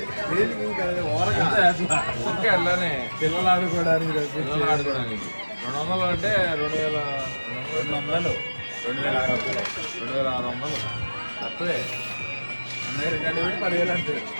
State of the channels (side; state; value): both; inverted; correlation -1.00